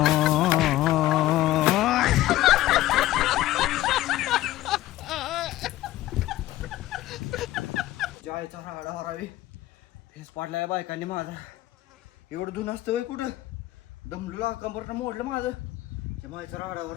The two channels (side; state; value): right; quieter; 15.5 dB